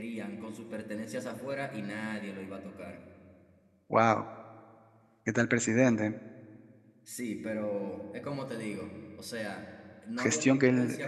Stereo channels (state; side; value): identical; both; correlation 1.00